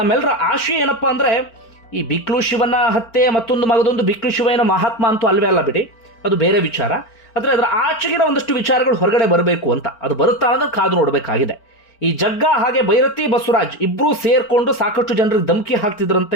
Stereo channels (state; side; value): late; right; 4.4 ms